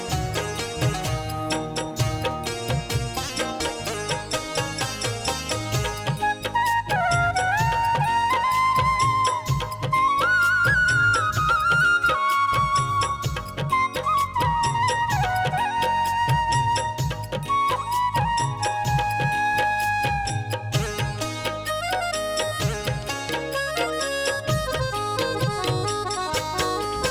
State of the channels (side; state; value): both; identical; correlation 1.00